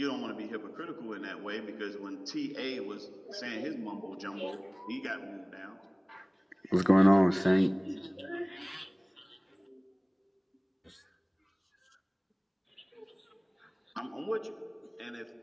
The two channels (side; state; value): both; identical; correlation 1.00